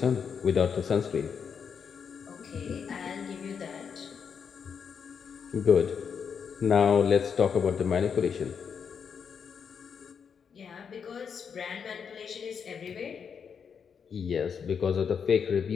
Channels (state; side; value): quieter; right; 6.8 dB